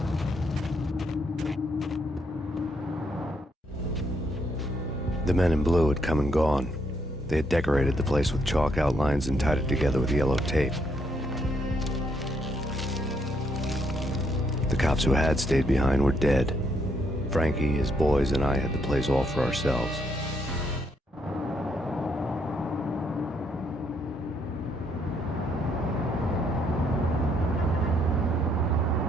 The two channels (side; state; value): both; normal; correlation 0.73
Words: The men in blue had come and gone. They had decorated the place with chalk outlines and tied it together with yellow tape. The cops who had stayed behind were dead. Frankie, his boys, and I had the place all for ourselves.